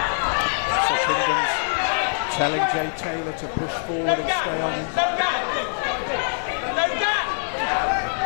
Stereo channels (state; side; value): silent; right; digital silence